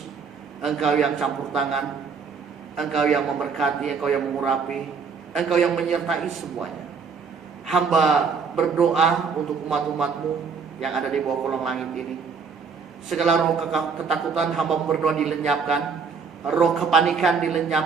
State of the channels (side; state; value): left; quieter; 5.5 dB